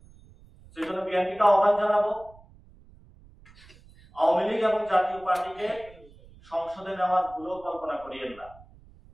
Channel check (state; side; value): noise; right; rumble, 24 dB below the sound